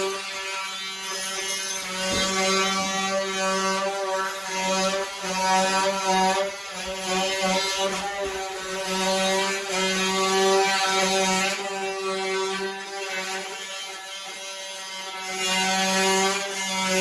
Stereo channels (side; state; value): both; identical; correlation 1.00